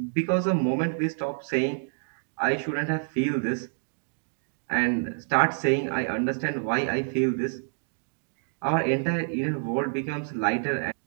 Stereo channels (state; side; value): silent; left; digital silence